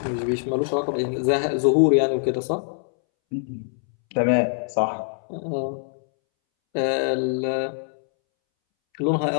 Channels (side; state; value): right; silent; 63 dB below the other